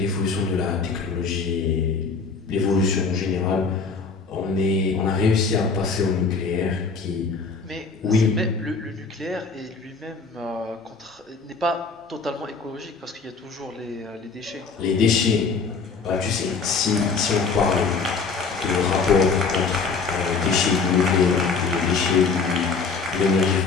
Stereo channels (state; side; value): quieter; right; 4.8 dB